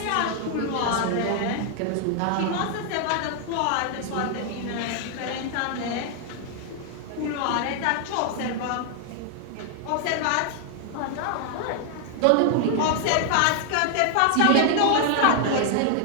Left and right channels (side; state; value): both; different; correlation 0.00